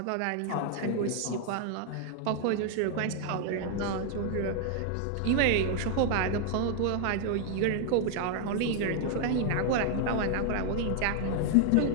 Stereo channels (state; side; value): different; both; correlation 0.00